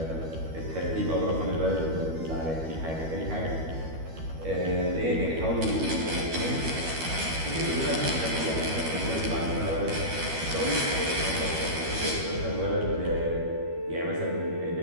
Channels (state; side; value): late; left; 12 ms